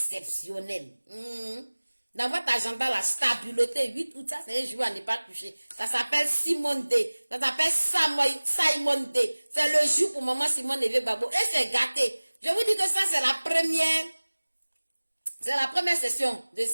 Dans votre agenda, la stabilité, 8 août, ça c'est un jour à ne pas toucher. Ça s'appelle Simone D. Ça s'appelle Simone D. C'est le jour pour maman Simone et Gbagbo. Et c'est gâté. Je vous dis que ça c'est la première session de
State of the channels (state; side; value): inverted; both; correlation -1.00